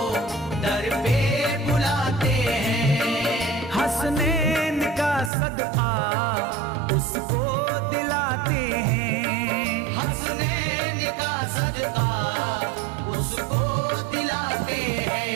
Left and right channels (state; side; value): drops out; left; at 5.3 s